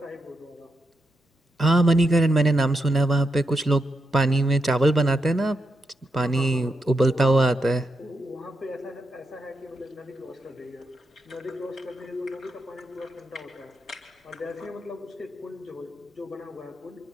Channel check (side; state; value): both; normal; correlation 0.84